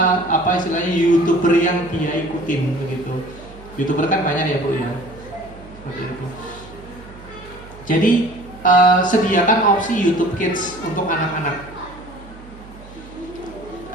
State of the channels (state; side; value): noise; right; hum, 19 dB below the sound